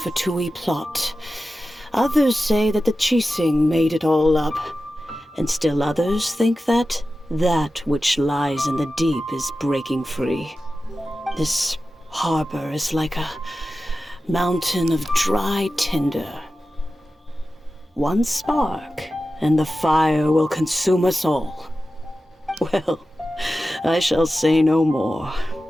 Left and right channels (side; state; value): both; normal; correlation 0.94